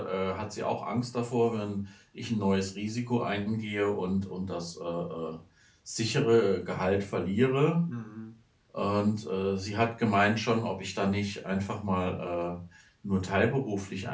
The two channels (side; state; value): both; identical; correlation 1.00